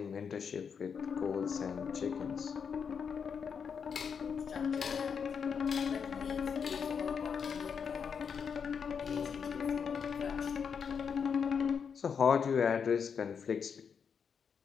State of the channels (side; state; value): right; quieter; 6.6 dB